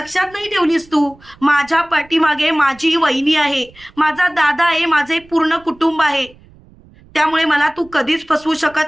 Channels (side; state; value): right; noise; rumble, 26 dB below the sound